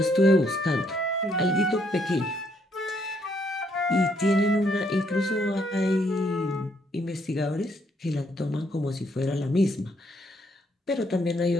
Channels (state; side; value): normal; both; correlation 0.72